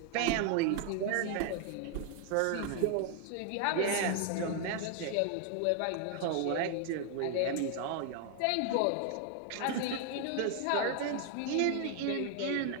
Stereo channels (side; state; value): both; different; correlation 0.00